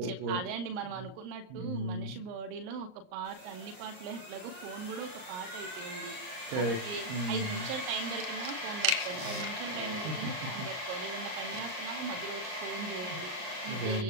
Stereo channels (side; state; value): left; late; 38 ms